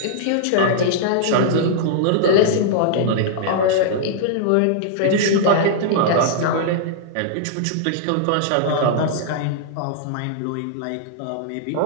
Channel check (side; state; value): both; different; correlation -0.02